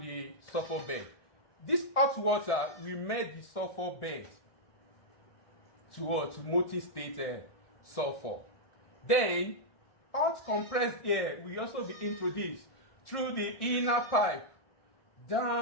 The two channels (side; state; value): right; late; 1.6 ms